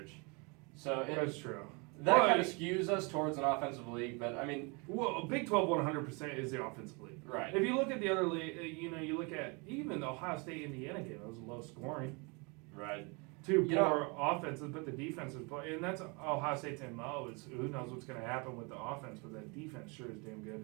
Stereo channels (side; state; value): left; quieter; 30.7 dB